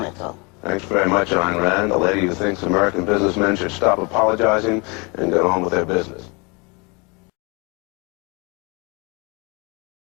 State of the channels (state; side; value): quieter; right; 29.6 dB